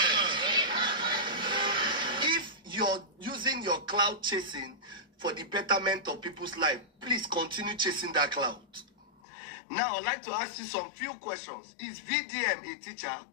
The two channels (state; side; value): drops out; right; at 9.1 s